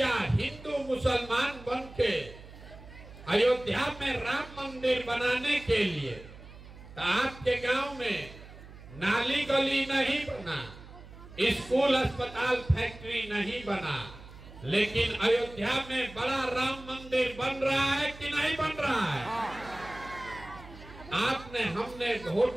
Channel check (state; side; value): noise; right; hum, 17 dB below the sound